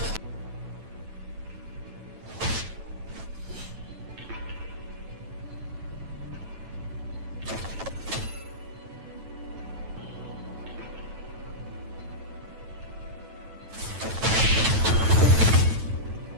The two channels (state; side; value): late; left; 9.1 ms